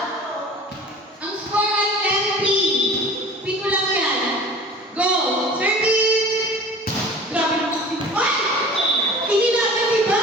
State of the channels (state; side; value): normal; both; correlation 0.42